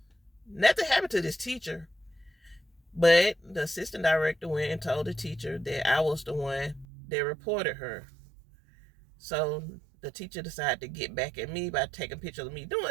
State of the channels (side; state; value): left; drops out; at 6.9 s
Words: nothing happened to this teacher, but the assistant director went and told the teacher that I was the one that reported her. So the teacher decided to get back at me by taking pictures of me